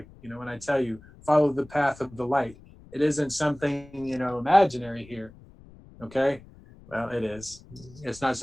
you know, when I tell you follow the path of the light, it isn't something, you know, imaginary here. Okay. Well, it is. It's not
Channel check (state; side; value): noise; left; rumble, 22 dB below the sound